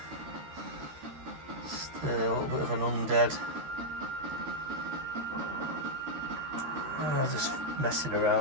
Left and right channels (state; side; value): late; left; 13 ms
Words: Just a little bit of an undead. Just messing